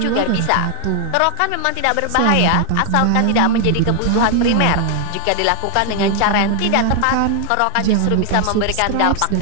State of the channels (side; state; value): both; different; correlation 0.00